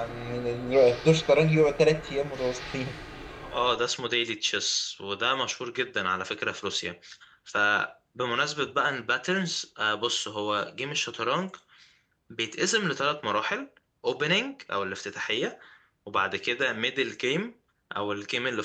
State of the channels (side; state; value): both; identical; correlation 1.00